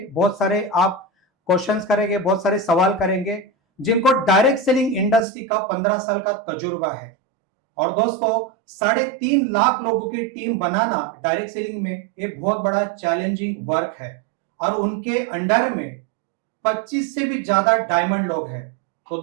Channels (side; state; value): left; drops out; at 5.2 s